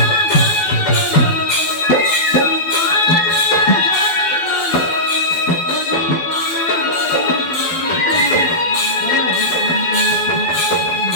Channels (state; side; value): late; right; 12 ms